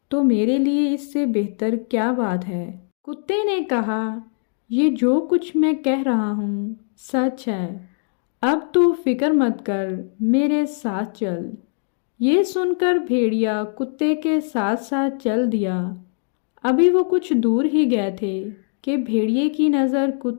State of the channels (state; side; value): silent; right; 65 dB below the other